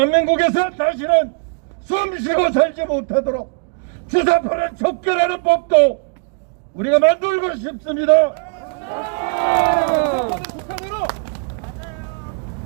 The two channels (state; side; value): quieter; left; 38.6 dB